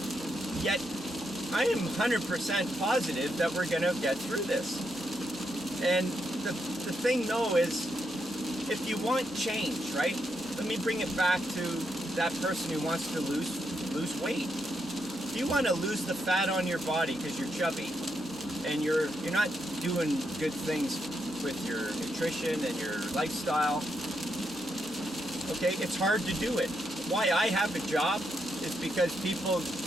Yet I am 100% positive that we're going to get through this. And the thing though is, if you want change, right? Let me bring it back to that person who wants to lose weight. If you want to lose the fat on your body because you're chubby and you're not doing good things with your nutrition and your lifestyle, okay, it's hard to do it. Why I have a job is because people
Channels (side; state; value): both; normal; correlation 0.81